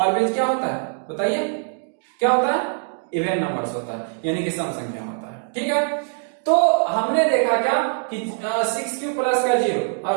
क्या होता है बताइए, क्या होता है, इवन नंबर्स होता है, यानी कि सम संख्या होता है, ठीक है। तो हमने देखा क्या कि 6q प्लस का 0 और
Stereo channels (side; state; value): left; silent; 64 dB below the other